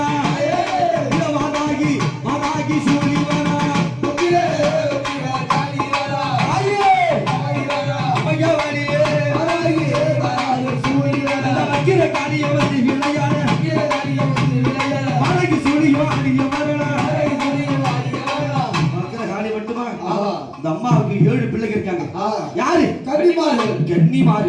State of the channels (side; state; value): both; identical; correlation 1.00